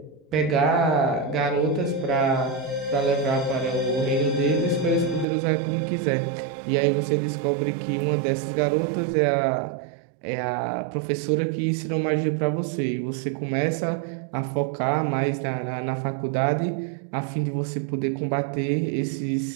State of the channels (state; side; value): drops out; left; at 5.2 s